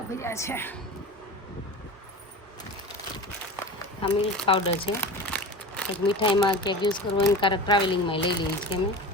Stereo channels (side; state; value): both; normal; correlation 0.32